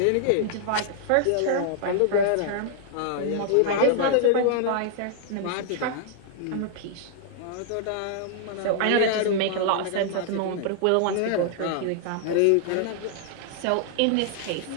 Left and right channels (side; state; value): both; different; correlation -0.01